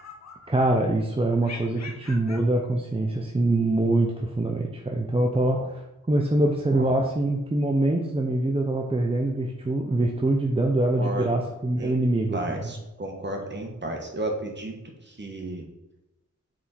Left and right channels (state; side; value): normal; both; correlation 0.75